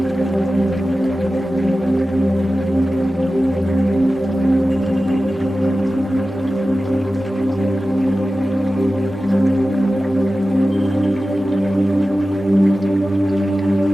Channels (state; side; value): normal; both; correlation 0.95